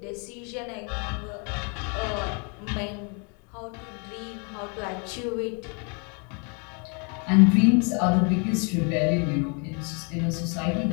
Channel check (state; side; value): quieter; right; 36.0 dB